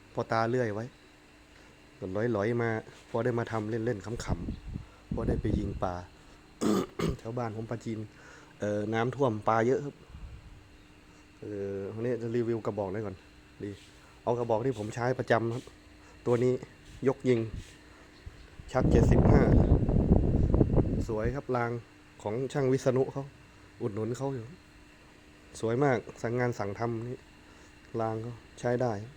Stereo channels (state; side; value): identical; both; correlation 1.00